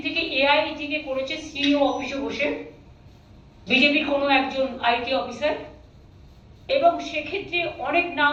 থেকে এআই থেকে করেছে সিইও অফিসে বসে বিজেপির কোনো একজন আইটি অফিসার। এবং সেক্ষেত্রে অনেক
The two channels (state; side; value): identical; both; correlation 1.00